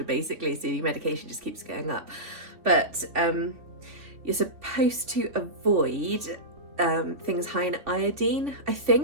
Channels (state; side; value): late; left; 3.4 ms